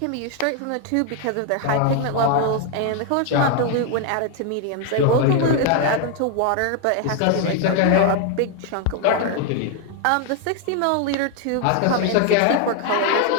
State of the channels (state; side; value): different; both; correlation 0.01